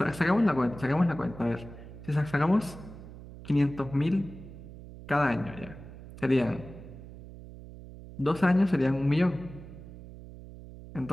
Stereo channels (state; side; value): noise; right; hum, 15 dB below the sound